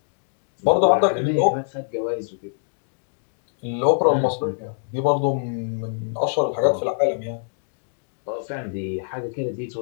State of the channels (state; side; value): silent; right; digital silence